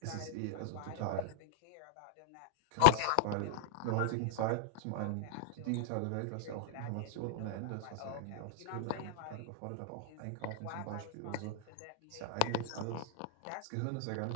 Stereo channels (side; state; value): both; different; correlation -0.01